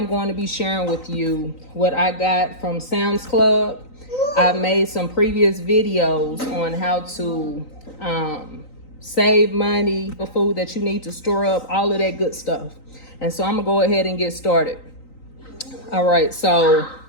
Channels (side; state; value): right; late; 3.9 ms